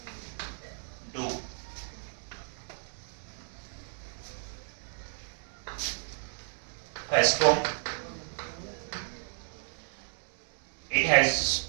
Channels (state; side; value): silent; left; 56 dB below the other